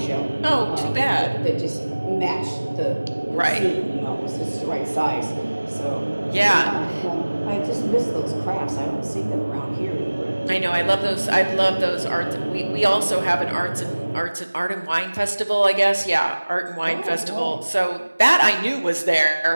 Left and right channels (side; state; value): both; inverted; correlation -1.00